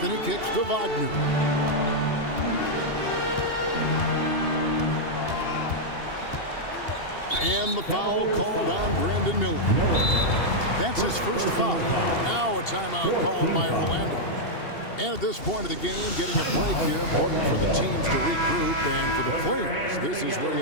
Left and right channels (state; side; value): late; right; 2.7 ms